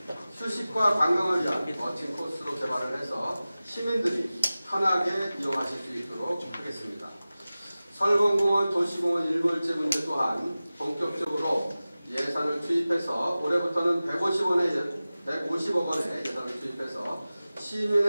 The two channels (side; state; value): both; inverted; correlation -0.96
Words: 휴식과 관광을 위한 멋진 코스로 개발을 해서 시민들이 편하게 이용하실 수 있도록 하겠습니다. 설봉공원 도시공원 일몰제 문제 또한 본격적으로 예산을 투입해서 올해부터는 150억 원의 예산을 투입해서